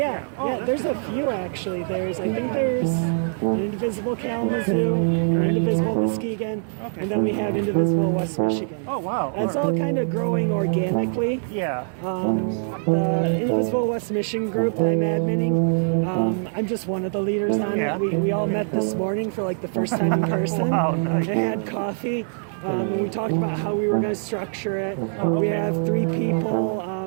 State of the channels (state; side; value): silent; left; digital silence